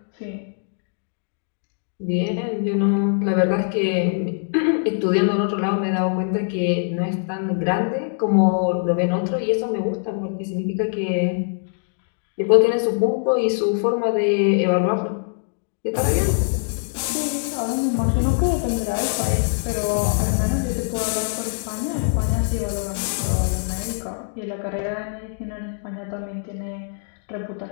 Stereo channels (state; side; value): silent; right; digital silence